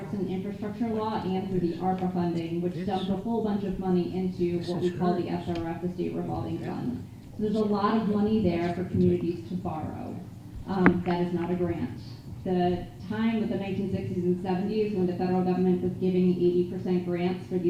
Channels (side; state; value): both; identical; correlation 1.00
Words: infrastructure law and through the ARPA funding, which dumped a whole bunch of money into what we call the SRF, the State Revolving Fund. So there's a lot of money there for communities to borrow. That is not a grant. The time of the 1960s and 70s when the federal government was giving 80% grants for